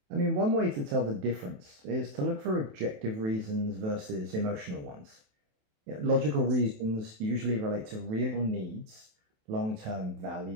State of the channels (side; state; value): left; late; 28 ms